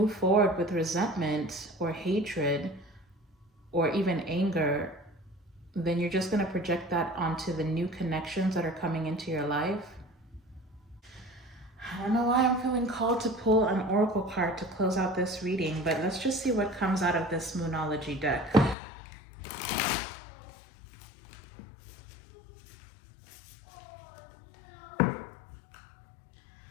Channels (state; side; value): drops out; right; at 18.8 s